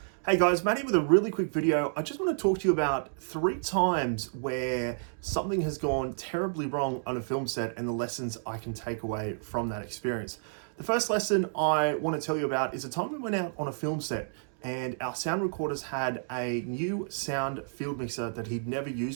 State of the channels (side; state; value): left; silent; digital silence